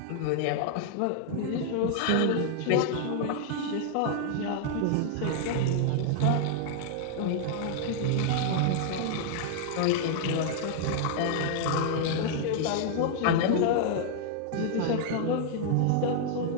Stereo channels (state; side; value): different; both; correlation -0.01